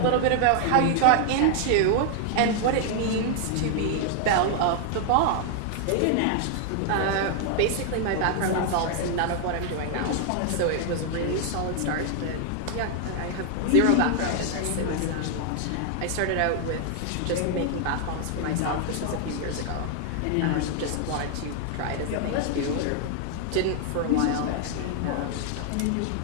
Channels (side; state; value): both; different; correlation 0.00